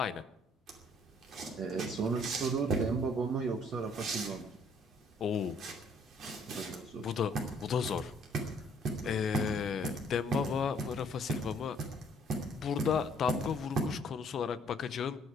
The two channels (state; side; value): normal; both; correlation 0.62